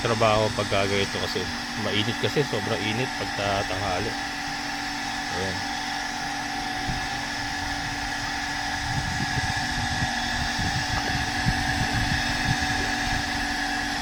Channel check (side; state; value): both; identical; correlation 1.00